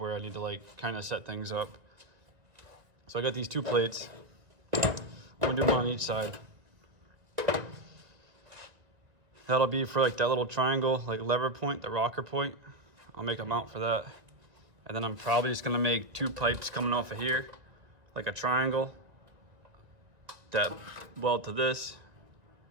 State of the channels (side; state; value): left; late; 1.9 ms